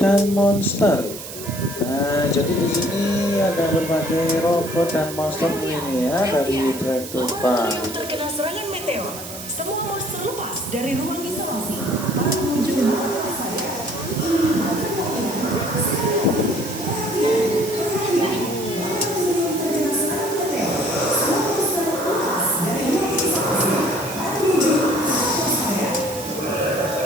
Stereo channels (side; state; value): right; noise; hiss, 11 dB below the sound